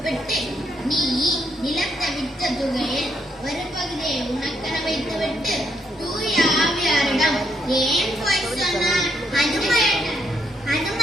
நீ நிலத்தை விற்ற தொகையில் ஒரு பகுதியை உனக்கென வைத்துவிட்டு தூய ஆவியாரிடம் ஏன் போய் சொன்னாய்? அது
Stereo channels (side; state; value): both; normal; correlation 0.75